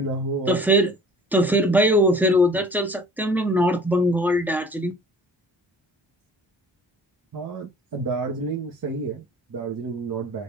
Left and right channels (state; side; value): normal; both; correlation 0.47